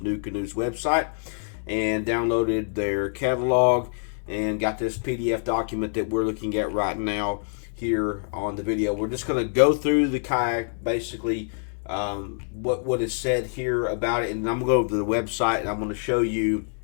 website and downloaded their catalog and got this PDF document that we're looking at right now here on the video. We're just going to go through the kayak, basically what is said here about it, and I'm going to go to the website and I'm going to show you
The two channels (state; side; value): silent; right; digital silence